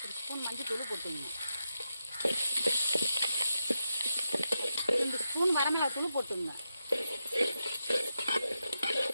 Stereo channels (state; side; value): inverted; both; correlation -0.86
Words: ஒரு ஸ்பூன் மஞ்சள் தூள் போட்டுக்கோங்க. 2 ஸ்பூன் வரமிளகாய் தூள் போட்டுக்கோங்க.